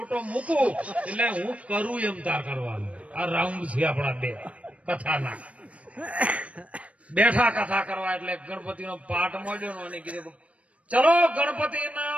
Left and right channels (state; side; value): late; left; 0.064 ms